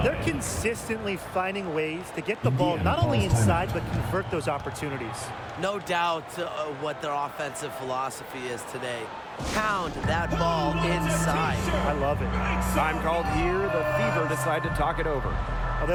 They're consistently finding ways to get the ball not only inside, but convert those opportunities. No doubt what their offensive philosophy is today. Pound that ball inside. I love it. Time called here. The Fever decide to talk it over. Well,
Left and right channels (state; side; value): identical; both; correlation 1.00